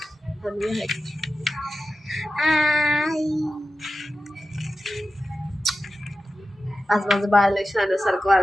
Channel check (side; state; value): both; normal; correlation 0.93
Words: आज माझं बाळ लय शाण्यासारखं